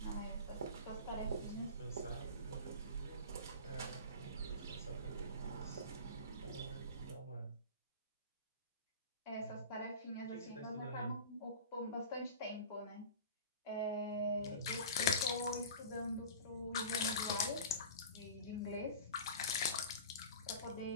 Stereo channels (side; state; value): both; inverted; correlation -0.33